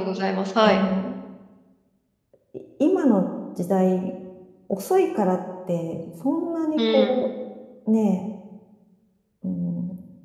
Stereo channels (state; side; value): identical; both; correlation 1.00